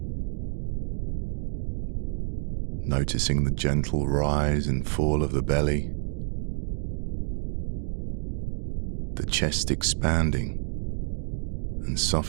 Noticing the gentle rise and fall of the belly, the chest expanding and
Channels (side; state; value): left; silent; digital silence